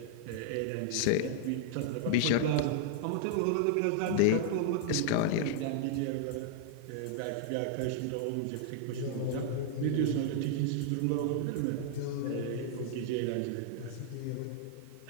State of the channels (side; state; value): both; different; correlation -0.01